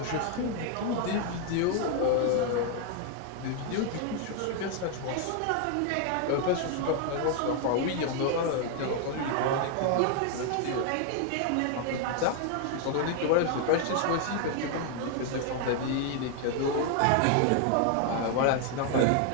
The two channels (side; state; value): both; different; correlation 0.00